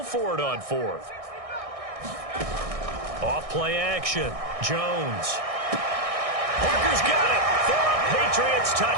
for it on 4th. Off play action. Jones. Parker's got it for a Patriots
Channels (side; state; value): left; late; 1.6 ms